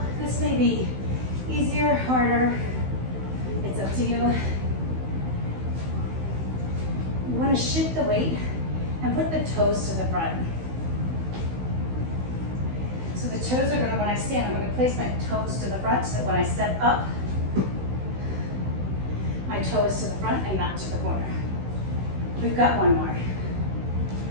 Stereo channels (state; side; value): late; left; 16 ms